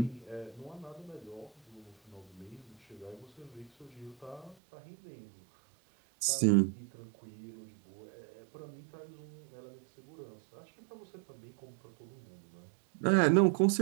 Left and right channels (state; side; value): drops out; left; at 4.5 s